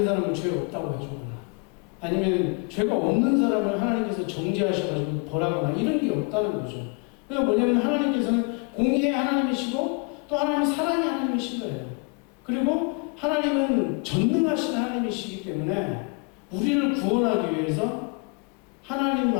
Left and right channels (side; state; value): right; quieter; 34.8 dB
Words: 사람은 죄 없다고 해주거나, 아니면 죄가 없는 사람을 하나님께서 정죄하셔가지고 벌하거나, 이런 게 없다는 거죠. 그러니까 뭐냐면, 하나님께서는 공의의 하나님이시고 또 하나님은 사랑의 하나님이신 거예요. 그리고 하나님은 전능하신 하나님이시기 때문에 우리를 구원하기 위해서 하나님